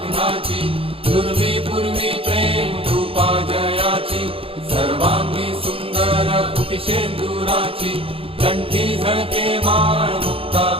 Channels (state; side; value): late; left; 0.27 ms